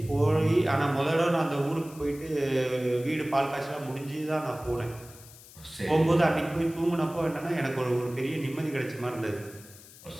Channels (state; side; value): noise; left; hiss, 20 dB below the sound